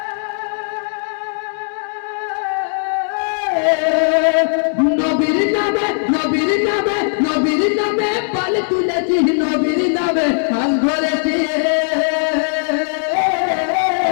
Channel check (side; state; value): right; silent; digital silence